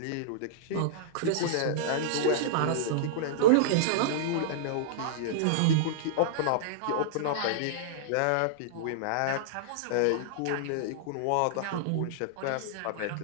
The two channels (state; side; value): different; both; correlation -0.02